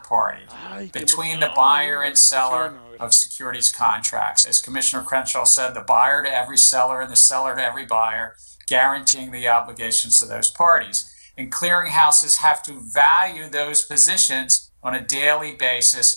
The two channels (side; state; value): both; inverted; correlation -1.00